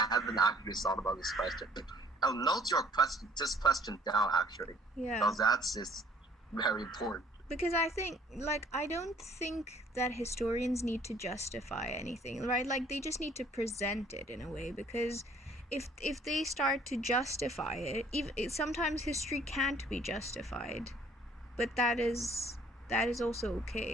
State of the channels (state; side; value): normal; both; correlation 0.58